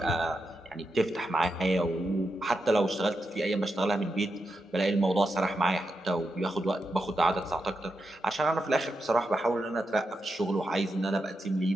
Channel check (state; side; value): normal; both; correlation 0.86